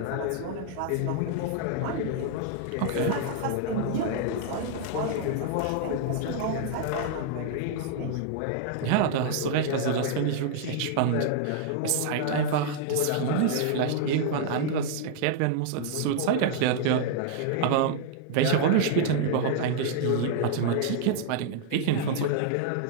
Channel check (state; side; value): different; both; correlation -0.01